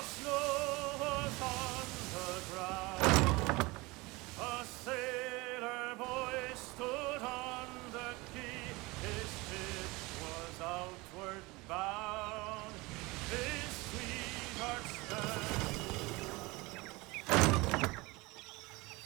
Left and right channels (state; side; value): quieter; left; 23.4 dB